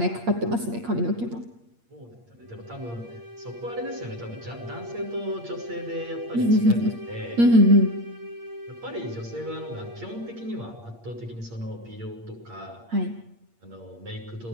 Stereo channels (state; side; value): late; left; 8.6 ms